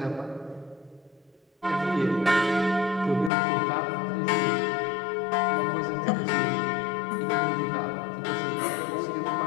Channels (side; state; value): right; drops out; at 3.3 s